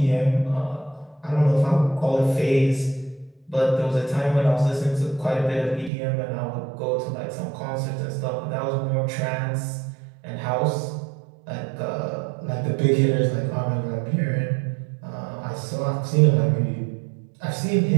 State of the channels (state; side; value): drops out; left; at 5.9 s